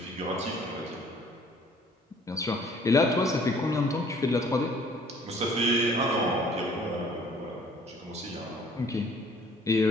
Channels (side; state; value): both; normal; correlation 0.55